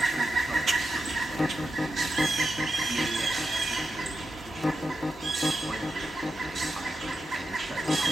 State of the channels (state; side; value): normal; both; correlation 0.88